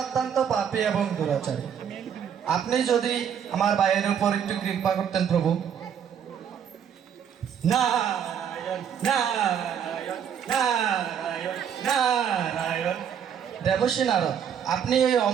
অত্যন্ত পাপী এবং দুরাচারী। আপনি যদি আমার ভাইয়ের উপর একটু কৃপা করতেন প্রভু। নারায়ণ নারায়ণ নারায়ণ নারায়ণ। দেবশ্রী নারদ, আপনি এই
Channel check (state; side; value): quieter; left; 8.3 dB